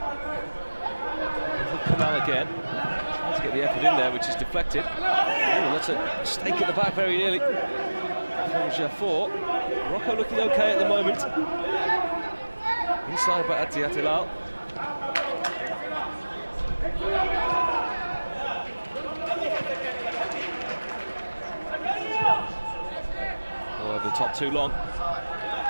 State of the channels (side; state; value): both; inverted; correlation -1.00